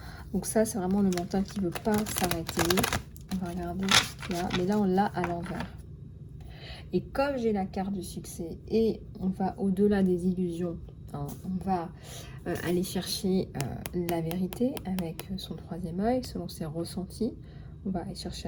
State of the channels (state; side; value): identical; both; correlation 1.00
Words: Donc ça, c'est vraiment le mental qui ne veut pas s'arrêter. On va regarder ce qu'il y a. Mais là, on l'a à l'envers. Et comme j'ai la carte du succès et on va au-delà des illusions, hein, on va aller chercher la vérité avec son 3e œil, selon ses ressentis. On va aller chercher